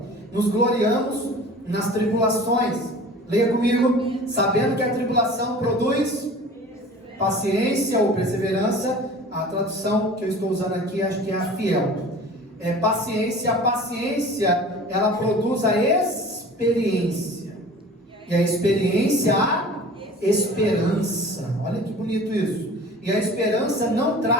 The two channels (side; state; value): both; normal; correlation 0.42